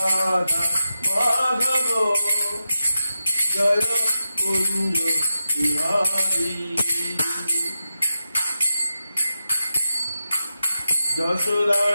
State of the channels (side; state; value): both; inverted; correlation -0.90